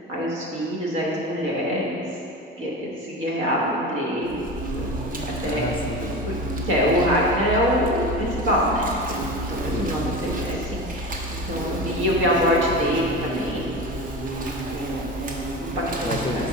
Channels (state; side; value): normal; both; correlation 0.29